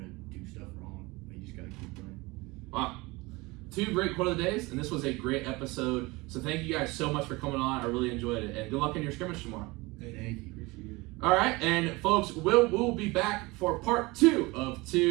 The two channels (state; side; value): quieter; left; 23.3 dB